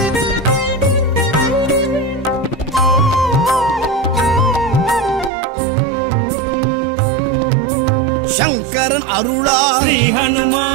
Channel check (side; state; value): left; drops out; at 5.3 s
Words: శంకరన్ అరుళా శ్రీ